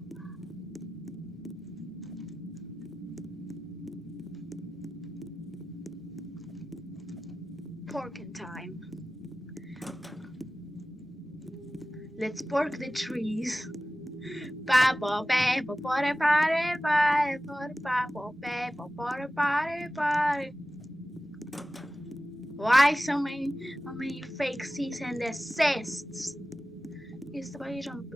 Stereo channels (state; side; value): normal; both; correlation 0.95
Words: Porking time. Let's pork the trees. Why so many fake cease and desists? He's the way